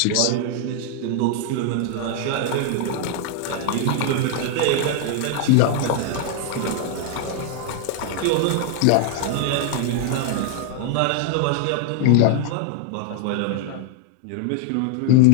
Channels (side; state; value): both; different; correlation 0.00